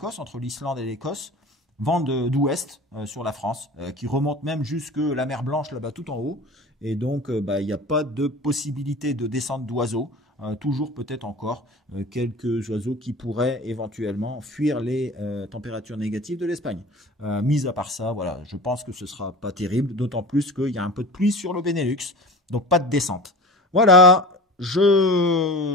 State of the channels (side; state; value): both; normal; correlation 0.37